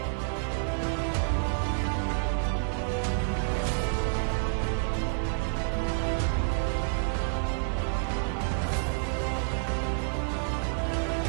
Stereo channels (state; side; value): silent; left; 57 dB below the other